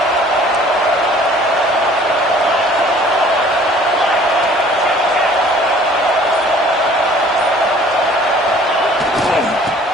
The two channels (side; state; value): both; normal; correlation 0.53